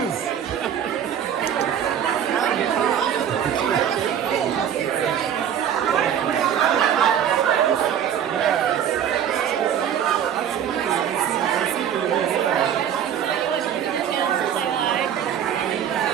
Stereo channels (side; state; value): left; quieter; 9.1 dB